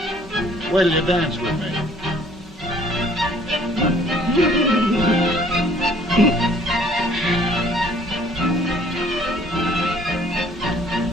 Wait till you dance with me.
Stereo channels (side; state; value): both; normal; correlation 0.57